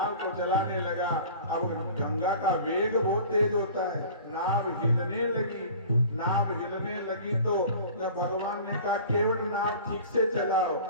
को चलाने लगा। अब गंगा का वेग बहुत तेज होता है, नाव हिलने लगी तो भगवान ने कहा केवट नाव ठीक से चलाओ।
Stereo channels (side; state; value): both; inverted; correlation -0.42